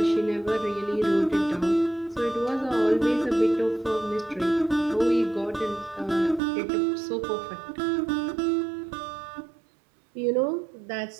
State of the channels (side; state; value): left; drops out; at 6.4 s